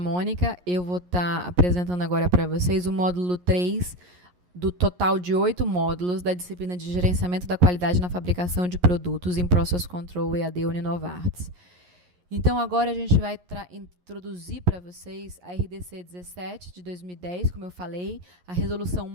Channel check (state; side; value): late; left; 11 ms